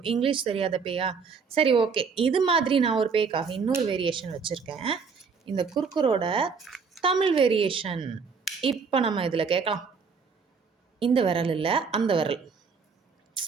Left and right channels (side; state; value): left; quieter; 5.4 dB